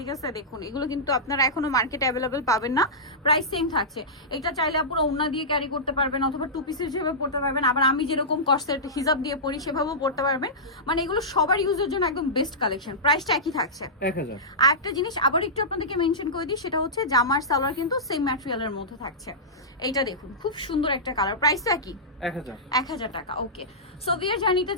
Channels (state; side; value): normal; both; correlation -0.15